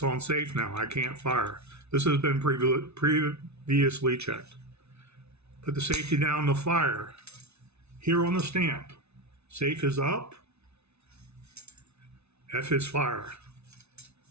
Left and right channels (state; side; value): late; left; 0.81 ms